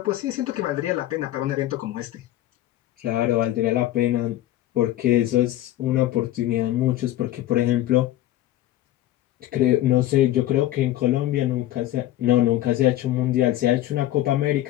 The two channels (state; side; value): quieter; right; 14.0 dB